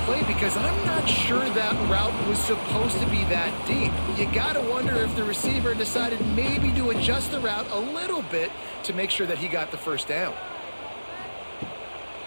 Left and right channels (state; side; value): inverted; both; correlation -1.00